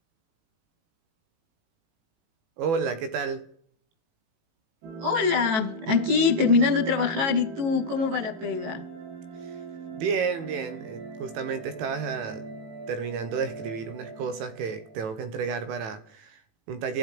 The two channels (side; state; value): left; late; 18 ms